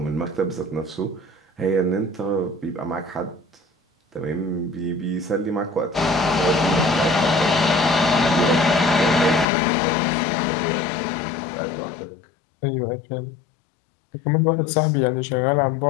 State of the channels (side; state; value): right; drops out; at 9.5 s